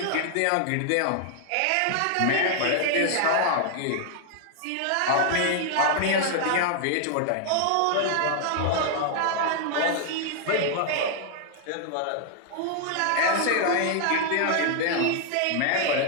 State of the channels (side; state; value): both; different; correlation 0.00